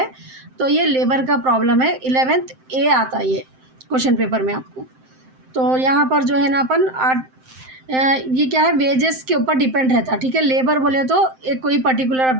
तो ये लेबर का प्रॉब्लम है। 11th ए आता है ये क्वेश्चन पेपर में आपको। तो यहाँ पर जो है ना अपन ये क्या है, वेजेस के ऊपर डिपेंड रहता है, ठीक है। लेबर बोले तो एक कोई पर्टिकुलर, अब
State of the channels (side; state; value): left; late; 7.7 ms